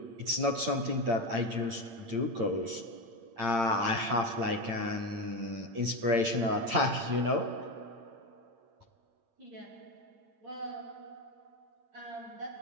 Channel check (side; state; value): left; late; 8.8 ms